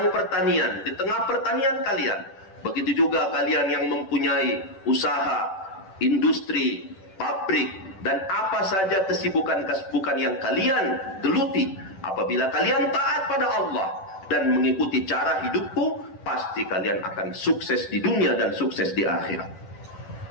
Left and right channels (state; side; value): late; right; 10 ms